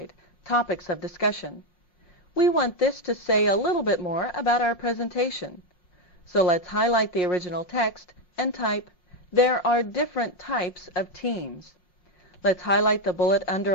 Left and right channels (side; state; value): right; late; 5.6 ms